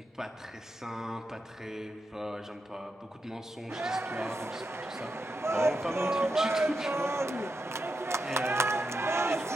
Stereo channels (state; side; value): normal; both; correlation 0.86